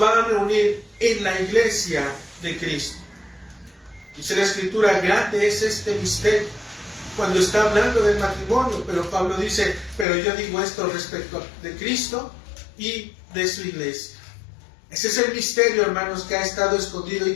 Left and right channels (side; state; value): right; drops out; at 10.1 s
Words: a reunir en la iglesia de Cristo. Dice la Escritura, grande es este misterio, cuando está hablando del matrimonio, pero Pablo dice, pero yo digo esto respecto de Cristo y de su iglesia. Ese es el misterio, hermanos, que ha estado escondido y